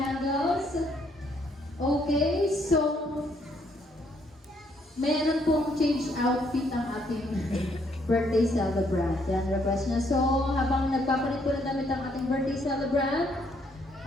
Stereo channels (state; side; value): normal; both; correlation 0.70